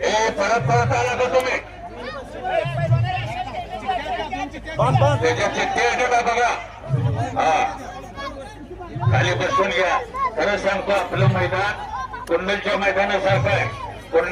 परत परत आला का तुम्ही त्याच्या चिठ्ठी आहे का बघा. हा खाली बसून घ्या. खरं सांगतो आपलं मैदान कुंडलच्या मैदानासारखं आहे.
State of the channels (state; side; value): identical; both; correlation 1.00